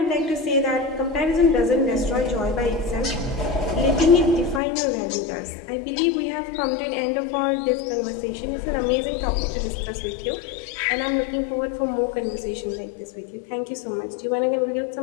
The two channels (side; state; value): right; drops out; at 4.6 s